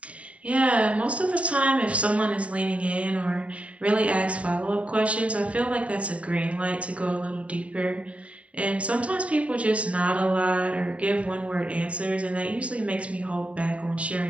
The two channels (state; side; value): late; left; 0.065 ms